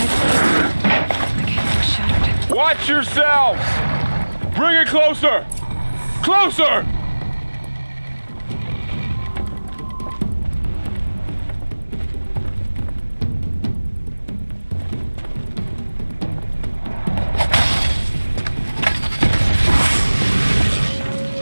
Watch yourselves! Bring it closer! Closer!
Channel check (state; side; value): inverted; both; correlation -1.00